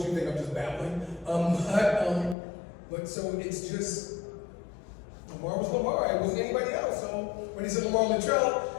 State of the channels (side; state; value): right; drops out; at 2.4 s